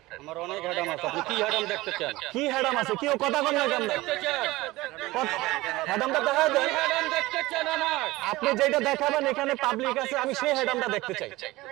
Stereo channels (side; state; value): left; quieter; 19.4 dB